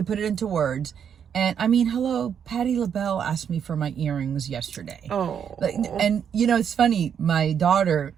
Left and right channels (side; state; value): left; quieter; 8.0 dB